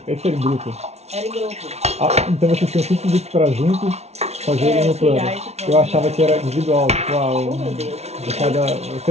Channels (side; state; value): left; late; 0.31 ms